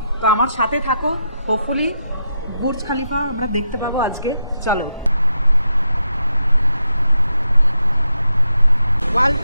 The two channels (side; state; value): both; inverted; correlation -0.83